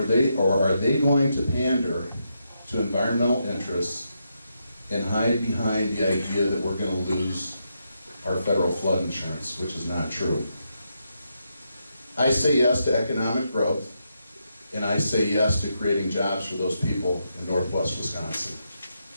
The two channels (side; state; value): both; inverted; correlation -0.82